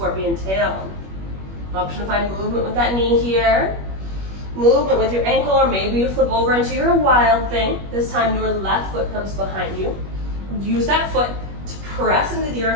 tail. Option to find movement with that knee here. Movement with your ankle, or maybe you flip over into your wild thing. This time your left foot comes behind you. Use that foot to press into the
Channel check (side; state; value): left; late; 21 ms